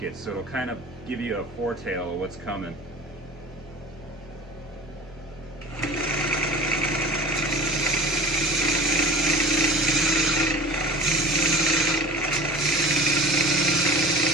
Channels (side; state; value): both; normal; correlation 0.39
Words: So it'll kind of give you a foretell of what's coming.